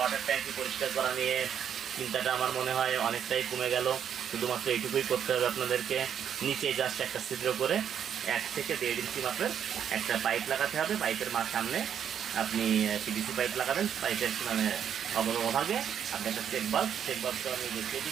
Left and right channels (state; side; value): quieter; left; 8.6 dB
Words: ট্যাঙ্কি পরিষ্কার করা নিয়ে চিন্তাটা আমার মনে হয় অনেকটাই কমে গেল। শুধুমাত্র এইটুকুই করতে হবে আপনাদেরকে, নিচে জাস্ট একটা ছিদ্র করে 1 থেকে 1.5 ইঞ্চি মাপের একটা পাইপ লাগাতে হবে। পাইপের সামনে আপনি পিভিসি পাইপ লাগাবেন, পাইপের মানে অগ্রভাগে আপনি একটা চেক বাল্বটা আমি দেখিয়ে